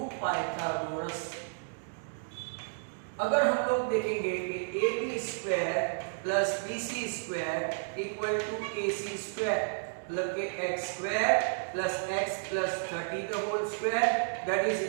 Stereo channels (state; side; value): silent; left; digital silence